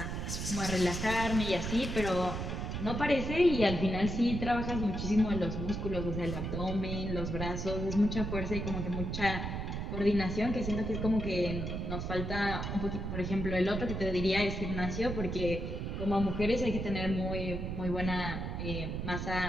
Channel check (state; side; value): noise; right; rumble, 3 dB below the sound